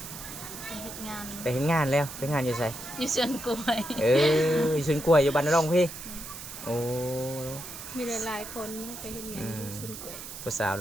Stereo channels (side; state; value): right; noise; hiss, 11 dB below the sound